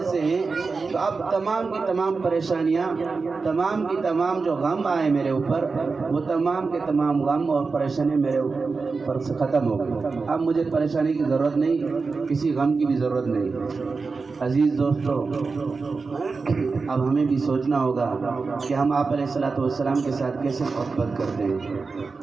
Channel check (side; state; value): left; quieter; 4.4 dB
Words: سے ہیں تو اب تمام کی تمام پریشانیاں، تمام کی تمام جو غم آئے میرے اوپر، وہ تمام کے تمام غم اور پریشانی میرے اوپر سے ختم ہو گئی۔ اب مجھے پریشانی کی ضرورت نہیں، کسی غم کی بھی ضرورت نہیں۔ عزیز دوستو، اب ہمیں بھی سوچنا ہوگا کہ ہم آپ علیہ الصلوۃ والسلام کے ساتھ کیسے محبت کرتے ہیں،